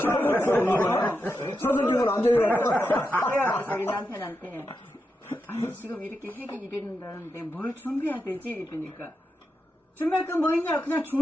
서서기면 안 돼요. 그래야 자기 남편한테 아니 지금 이렇게 핵이 이러는다는데 뭘 준비해야 되지? 이러니까 준비할 건 뭐 있냐? 그냥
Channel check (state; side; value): normal; both; correlation 0.87